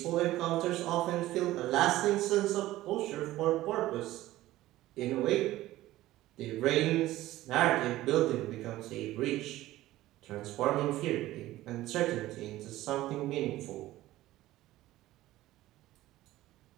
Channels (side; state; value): left; quieter; 16.0 dB